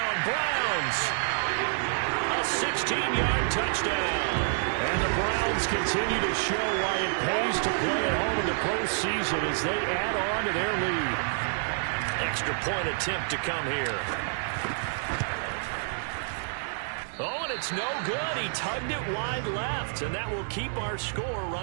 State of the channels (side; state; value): left; silent; 59 dB below the other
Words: Browns! A 16-yard touchdown. And the Browns continue to show why it pays to play at home in the postseason as they add on to their lead. Extra point attempt to come here. Oh, and it's no good. He tugged it wide left, and that will keep our score